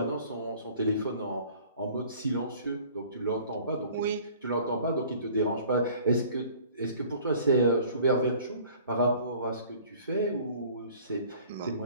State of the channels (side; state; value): both; inverted; correlation -0.51